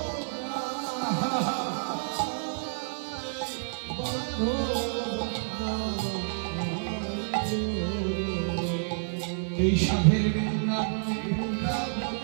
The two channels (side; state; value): left; silent; digital silence